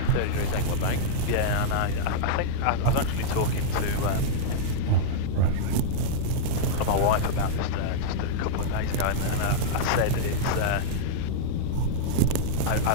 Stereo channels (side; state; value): both; different; correlation -0.03